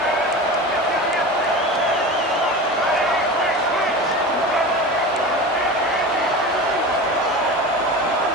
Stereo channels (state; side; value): normal; both; correlation 0.30